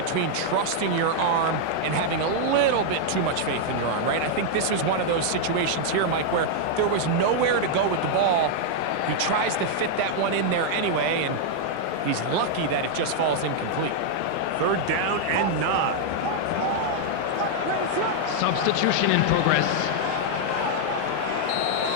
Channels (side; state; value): both; different; correlation -0.01